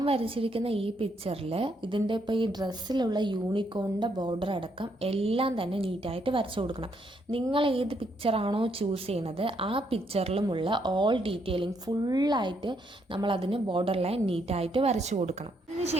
വരച്ചിരിക്കുന്ന ഈ പിക്ചറിൽ ഇതിൻ്റെ ഇപ്പോൾ ഈ ഡ്രസ്സിലുള്ള യൂണിക്കോണിൻ്റെ ബോർഡർ അടക്കം എല്ലാം തന്നെ നീറ്റായിട്ട് വരച്ചു കൊടുക്കണം. നിങ്ങൾ ഏത് പിക്ചറാണോ ചൂസ് ചെയ്യുന്നത് ആ പിക്ചറിലുമുള്ള ഓൾ ഡീറ്റെയിലിംഗ് ഫുള്ളായിട്ട് നമ്മൾ അതിന് ബോർഡർ ലൈൻ നീറ്റായിട്ട് വരച്ചു കൊടുക്കണം.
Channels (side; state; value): both; normal; correlation 0.74